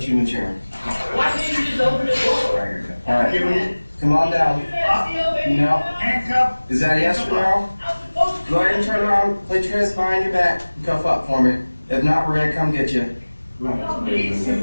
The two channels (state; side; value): inverted; both; correlation -1.00